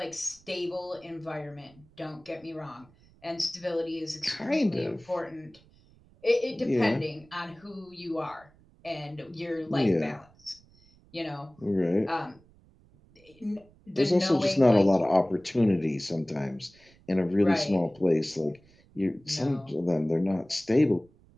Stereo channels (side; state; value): right; noise; rumble, 28 dB below the sound